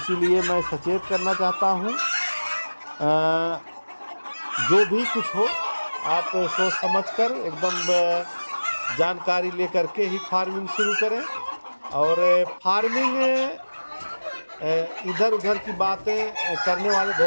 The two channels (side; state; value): both; inverted; correlation -1.00